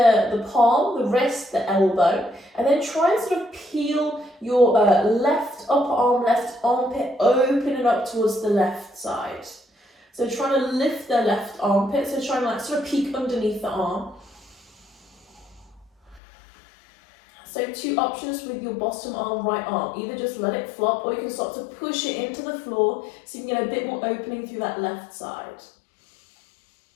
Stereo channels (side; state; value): right; drops out; at 16.2 s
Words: palm, the wrist, the elbow, and then try and sort of peel your left upper arm, left armpit, opening up towards the left side. So trying to lift the left armpit, so trying to like sort of peek underneath the arm. So two options with your bottom arm, right arm. Either just let it flop or you can start to push it into the floor so you can get a bit more opening through that left side.